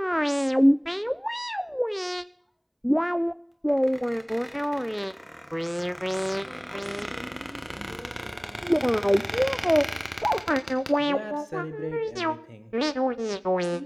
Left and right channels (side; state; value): both; identical; correlation 1.00